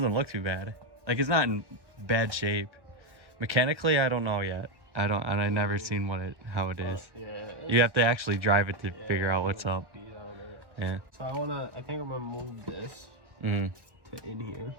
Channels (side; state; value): left; late; 1.1 ms